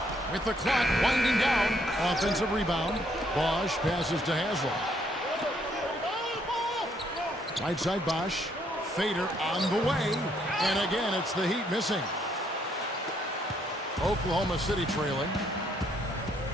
With the clock winding down. Offensive rebound. Bosch passes to Haslam. Right side Bosch. Fader on the way. And again, it's the Heat missing. Oklahoma City trailing.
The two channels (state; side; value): normal; both; correlation 0.70